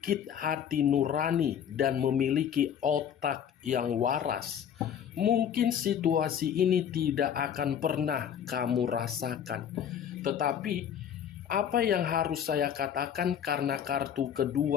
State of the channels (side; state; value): right; quieter; 8.9 dB